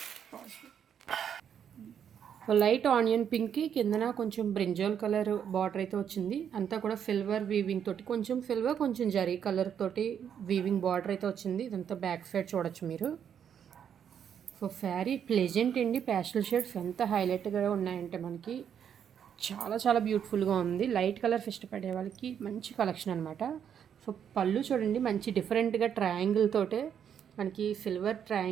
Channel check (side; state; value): left; quieter; 8.4 dB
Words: లైట్ ఆనియన్ పింక్కి కిందన కొంచెం బ్రింజాల్ కలర్ బార్డర్ అయితే వచ్చింది. అంతా కూడా సిల్వర్ వీవింగ్ తోటి, కొంచెం సిల్వర్ కొంచెం జరీ కలర్ తోటి వీవింగ్ బార్డర్ అయితే వచ్చింది. ఇదంతా బ్యాక్ సైడ్ చూడొచ్చు మీరు. సో శారీ ప్లెజెంట్ అండి. ప్యాస్టల్ షేడ్స్ ఎంత హైలైట్గా ఉన్నాయంటే మనకి చాలా చాలా బ్యూటిఫుల్గా ఉంది. లైట్ కలర్స్ ఇష్టపడే వాళ్ళకి మంచి కలెక్షన్ అనమాట. సో పళ్ళు చూడండి, మంచి డిఫరెంట్గా ట్రయాంగిల్ తోటే మనకి సిల్వర్